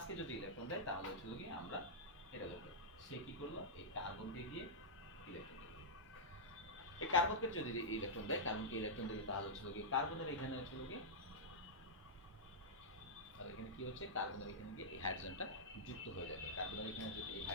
যদি ইলেকট্রন দেয় তাহলে হচ্ছে গিয়ে আমরা এটা লিখবো, সে কি করলো এই কার্বনকে দিয়ে ইলেকট্রন দিল। এই কার্বনকে যদি ইলেকট্রন দেয়, কার্বনকে ইলেকট্রন দিলে তাহলে হচ্ছে গিয়ে কার্বনের এখানে হচ্ছে গিয়ে, তাহলে এখানে কি হচ্ছে, কার্বনের এখানে গিয়ে এই হাইড্রোজেনটা যুক্ত হয়ে যাবে। কার্বনের এখানে যদি এই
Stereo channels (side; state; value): both; normal; correlation -0.10